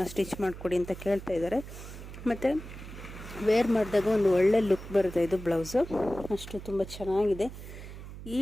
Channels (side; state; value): right; noise; hum, 12 dB below the sound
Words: ಸ್ಟಿಚ್ ಮಾಡಿಕೊಡಿ ಅಂತ ಕೇಳ್ತಾ ಇದ್ದಾರೆ. ಮತ್ತು ವೇರ್ ಮಾಡಿದಾಗ ಒಂದು ಒಳ್ಳೆ ಲುಕ್ ಬರುತ್ತೆ. ಇದು ಬ್ಲೌಸು ಅಷ್ಟು ತುಂಬ ಚೆನ್ನಾಗಿದೆ. ಈ